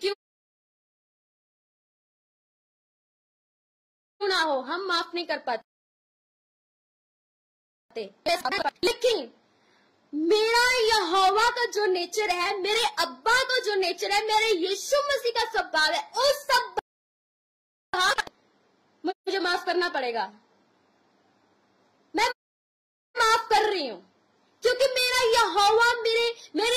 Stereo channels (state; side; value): identical; both; correlation 1.00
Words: ना हो, हम माफ नहीं कर पाते। लेकिन मेरा यहोवा का जो नेचर है, मेरे अब्बा का जो नेचर है, मेरे यीशु मसीह का स्वभाव है, उस सब मुझे माफ करना पड़ेगा। मैं माफ कर रही हूं क्योंकि मेरा यहोवा,